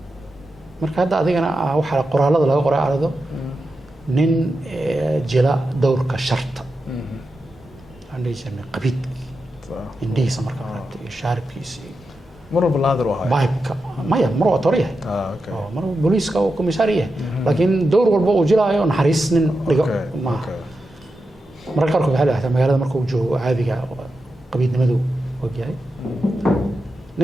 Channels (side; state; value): both; normal; correlation 0.89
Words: marka hadda adigana waxa qoraalada laga qoray arado nin jila dowrka sharta عندي جميع قبيد إنديس مركب رابط شارب كيسي مرة بالنادر وهاي بايك ما هي مرة طريقة مرة بوليس كأو كوميسارية لكن دور والبو جلا يون حريص ما مرة كاركو بحاله حتى مقالة مركو جو عادي قبيد نمدو وجاي